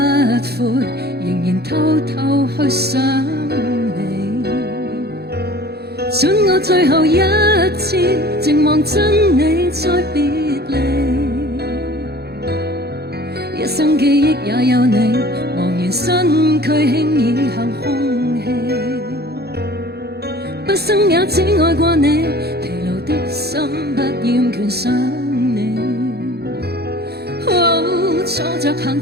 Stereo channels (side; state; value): left; late; 0.47 ms